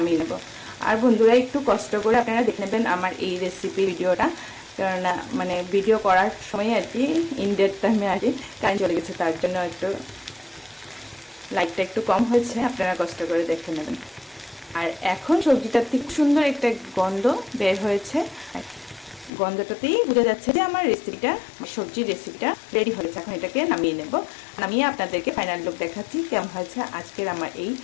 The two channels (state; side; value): drops out; right; at 19.3 s